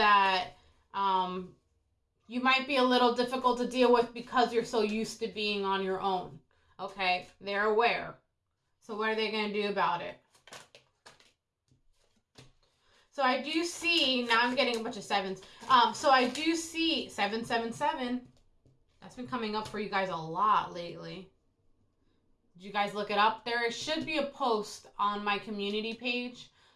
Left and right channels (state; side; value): identical; both; correlation 1.00